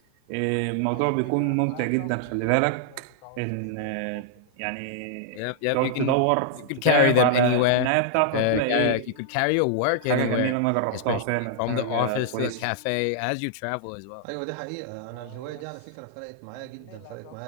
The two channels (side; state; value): both; different; correlation -0.01